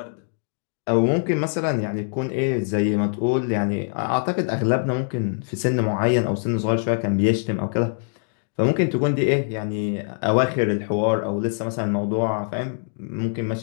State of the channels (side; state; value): right; silent; digital silence